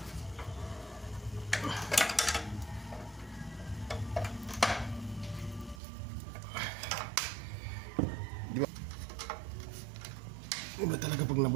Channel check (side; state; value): left; drops out; at 5.8 s